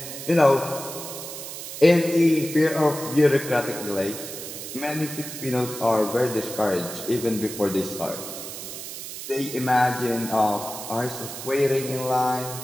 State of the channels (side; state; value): right; noise; hiss, 9 dB below the sound